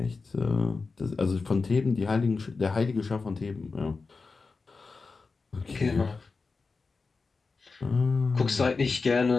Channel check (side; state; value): right; quieter; 4.3 dB